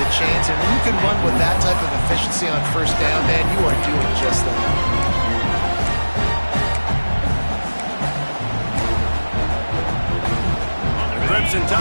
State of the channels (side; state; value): both; inverted; correlation -1.00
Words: chains, and when you can run with that type of efficiency on 1st down, man, you are doing just that. The Crimson